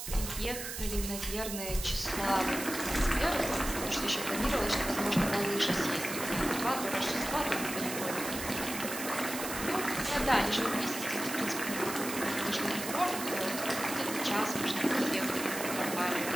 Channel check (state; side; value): noise; right; hiss, 7 dB below the sound